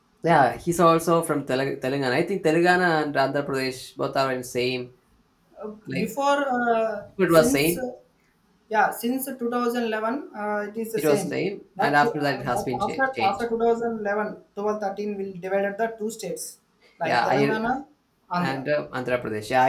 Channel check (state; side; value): identical; both; correlation 1.00